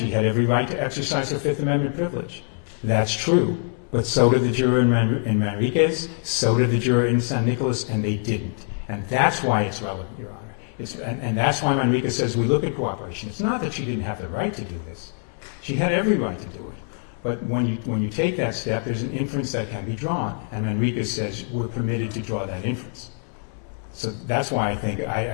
had every right to exercise her Fifth Amendment privilege. That's true, but so did the juror in Manriquez, so did the juror in San Nicolas, and they didn't. And that's why it's relevant, Your Honor. And that's why Manriquez says we look at cooperation. It's not that she didn't have the right to do this. She had every right to do it. But when you take that step, there's an inference that can be drawn, and Manriquez says we're permitted to draw that inference. So that's why I think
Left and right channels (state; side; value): silent; right; 59 dB below the other